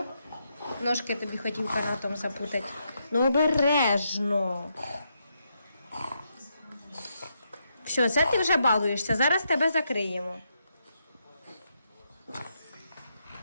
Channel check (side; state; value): both; inverted; correlation -0.80